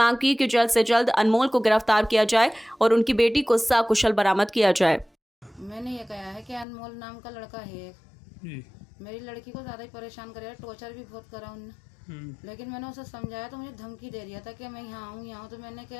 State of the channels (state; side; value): drops out; right; at 6.7 s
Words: की कि जल्द से जल्द अनमोल को गिरफ्तार किया जाए और उनकी बेटी को सकुशल बरामद किया जाए। मैंने ये कहा है कि अनमोल नाम का लड़का है जी। मेरी लड़की को ज्यादा ही परेशान कर रहा है, टॉर्चर भी बहुत करा उन्होंने। लेकिन मैंने उसे समझाया तो मुझे धमकी दे दिया था कि मैं यहाँ हूँ तो मैंने